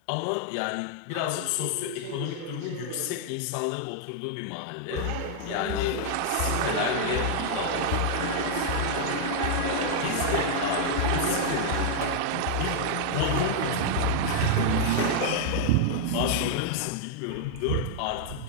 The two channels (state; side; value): different; both; correlation -0.01